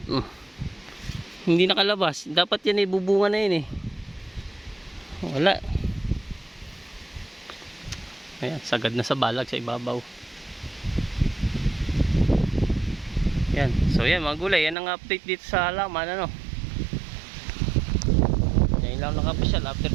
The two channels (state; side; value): drops out; left; at 14.8 s